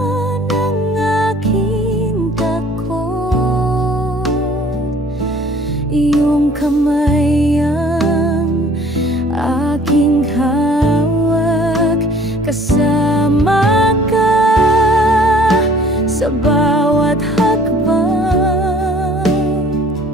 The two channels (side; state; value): both; normal; correlation 0.53